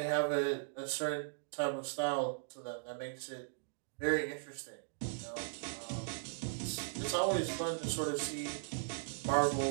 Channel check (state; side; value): silent; left; digital silence